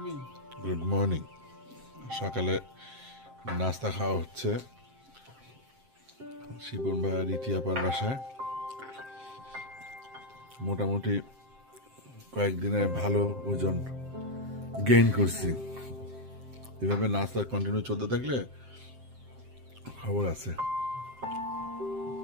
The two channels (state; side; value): late; left; 7.6 ms